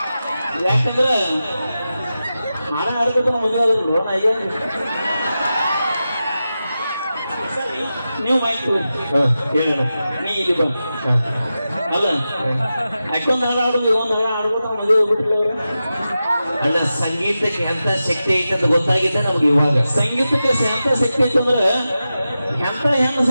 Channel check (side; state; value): both; inverted; correlation -0.92